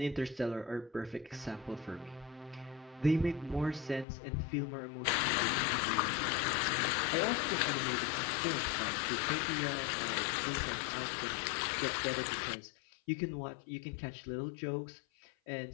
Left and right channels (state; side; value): drops out; right; at 4.0 s